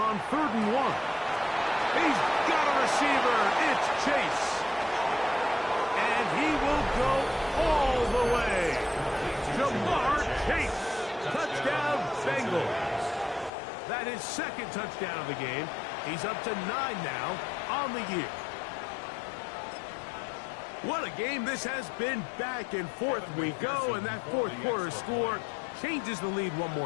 3rd and 1. He's got a receiver. It's Chase. And he will go all the way. Jamar Chase. Touchdown, Bengals. That is 2nd touchdown of the game. He's up to 9 now on the year. What a game this has been. Back and forth we go, and that 4th quarter score changes the lead one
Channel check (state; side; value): drops out; right; at 13.5 s